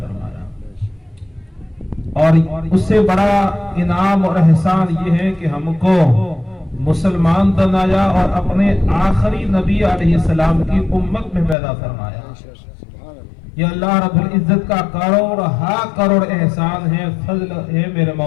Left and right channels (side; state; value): right; drops out; at 11.6 s